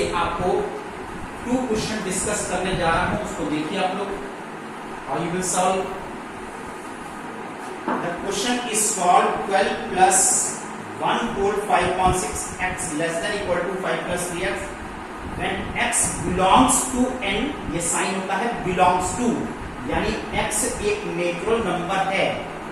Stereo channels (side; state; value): both; identical; correlation 1.00